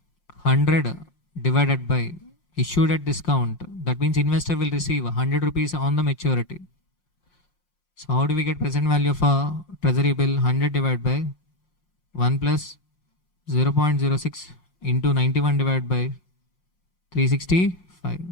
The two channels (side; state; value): right; late; 5.6 ms